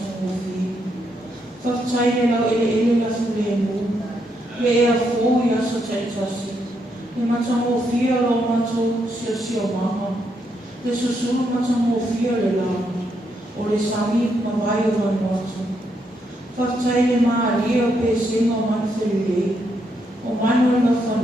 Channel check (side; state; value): both; normal; correlation 0.78